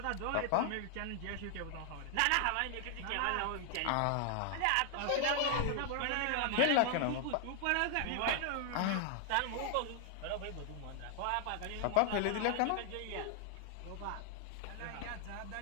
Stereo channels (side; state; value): both; different; correlation 0.00